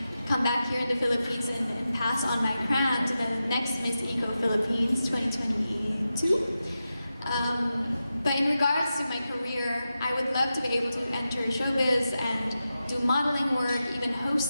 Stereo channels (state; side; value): inverted; both; correlation -0.91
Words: come back here in the Philippines and pass on my crown to the next Miss Eco Philippines 2022. But in regards to my career, I would love to be able to enter showbiz and do modeling work, even